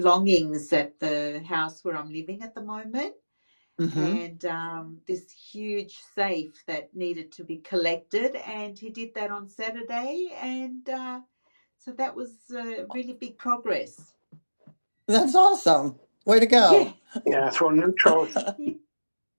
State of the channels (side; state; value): both; inverted; correlation -1.00